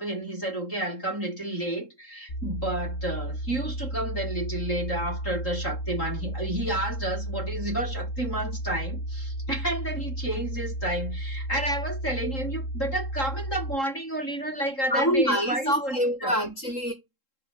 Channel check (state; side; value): late; right; 3.7 ms